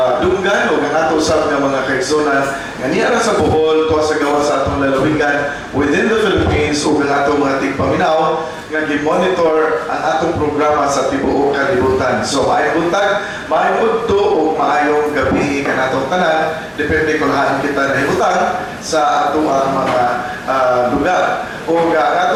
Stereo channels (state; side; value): identical; both; correlation 1.00